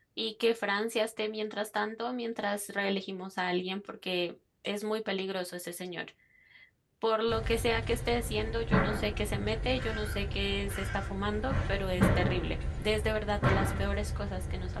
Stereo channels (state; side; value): identical; both; correlation 1.00